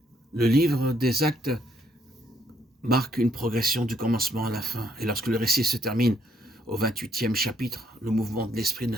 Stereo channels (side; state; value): both; normal; correlation 0.70